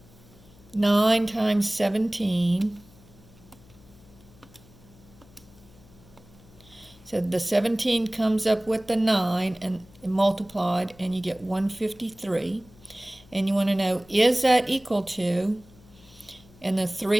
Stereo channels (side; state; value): left; noise; hum, 25 dB below the sound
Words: 9 times 17. So the 17 comes up with the 9 and multiplied, and you get 153. And you want to know, is that equal to, and the